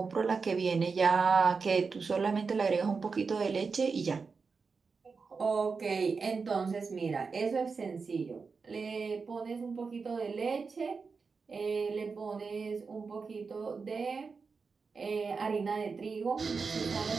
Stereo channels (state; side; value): quieter; left; 4.9 dB